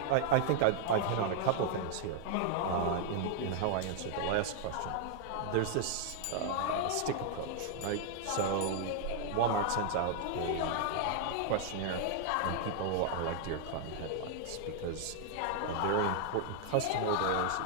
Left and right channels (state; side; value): different; both; correlation -0.01